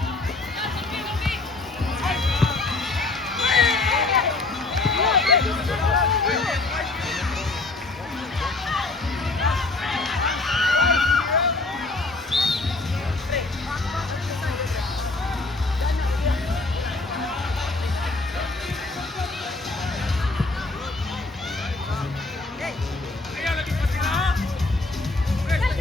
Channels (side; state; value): right; quieter; 3.3 dB